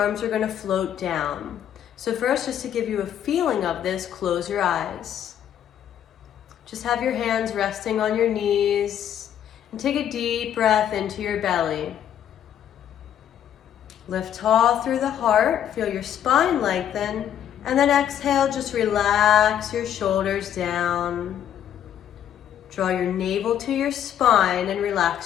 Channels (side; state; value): right; quieter; 10.1 dB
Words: are going to float down. So first, just to give you a feeling of this, close your eyes. Just have your hands resting on your knees. And take a deep breath into your belly. Lift tall through the heart, feel your spine lengthen, and then exhale, just relax your shoulders down. Draw your navel to your spine and